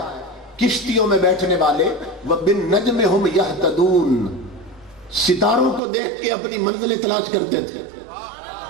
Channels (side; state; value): left; drops out; at 5.8 s